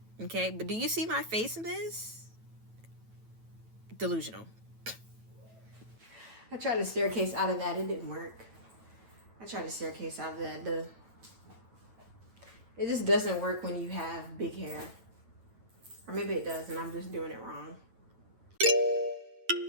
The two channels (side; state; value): left; late; 9.1 ms